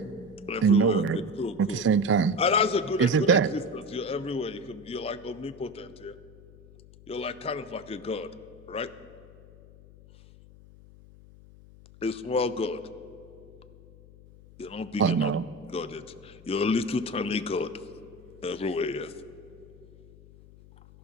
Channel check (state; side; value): noise; left; hum, 22 dB below the sound